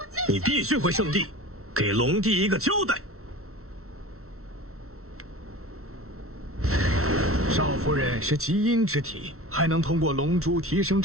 你必须回圣地，给龙帝一个交代。少夫人是极阴之体，还能通过龙珠提升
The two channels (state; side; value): late; left; 0.63 ms